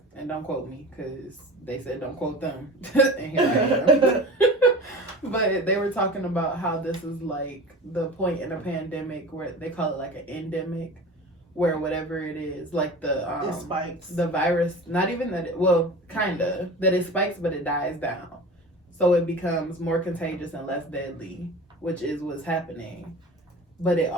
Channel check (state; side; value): normal; both; correlation 0.35